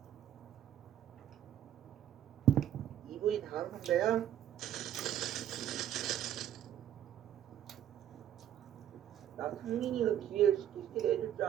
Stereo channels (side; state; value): left; quieter; 11.1 dB